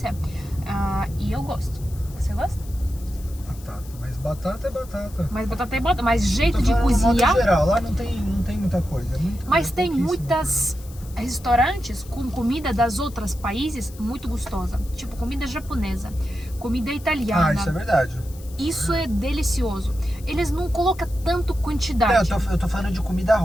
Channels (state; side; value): noise; left; hiss, 21 dB below the sound